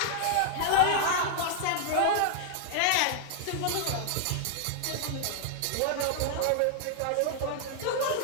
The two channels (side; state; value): both; different; correlation 0.00